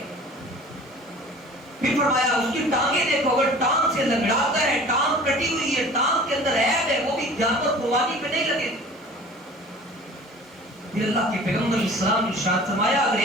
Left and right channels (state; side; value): normal; both; correlation 0.44